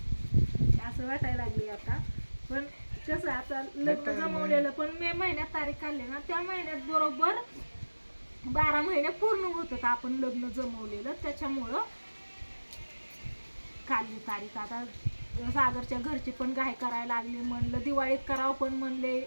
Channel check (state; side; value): inverted; both; correlation -1.00